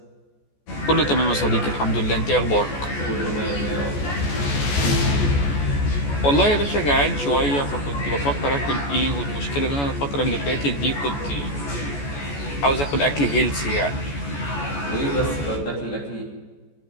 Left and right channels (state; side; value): late; right; 14 ms